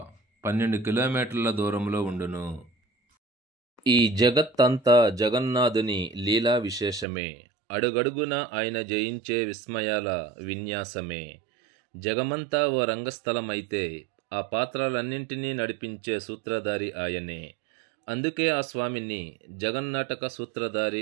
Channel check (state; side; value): drops out; left; at 7.1 s